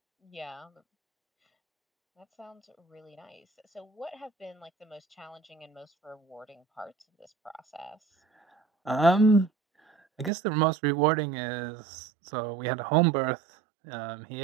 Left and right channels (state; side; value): drops out; left; at 10.3 s